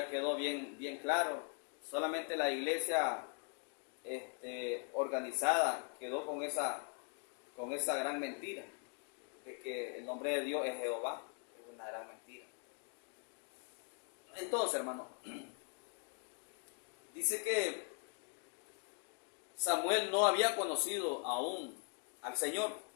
quedó bien claro. Solamente la iglesia organizada quedó con esa gran mentira de que el nombre de Dios es Jehová. Es una gran mentira. Entonces, hermano, dice que Samuel no había conocido aún al Señor,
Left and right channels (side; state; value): right; quieter; 39.1 dB